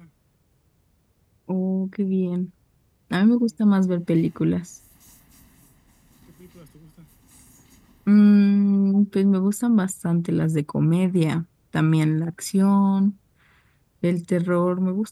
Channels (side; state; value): both; identical; correlation 1.00